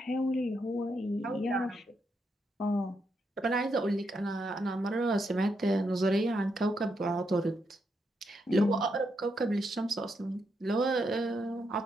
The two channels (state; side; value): normal; both; correlation 0.80